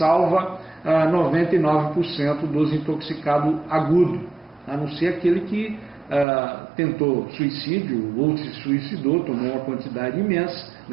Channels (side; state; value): left; drops out; at 6.2 s